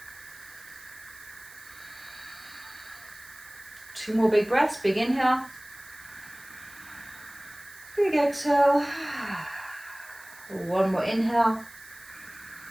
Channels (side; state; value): right; noise; hiss, 20 dB below the sound